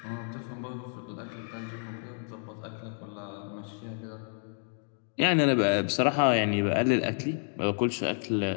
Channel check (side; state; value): right; silent; digital silence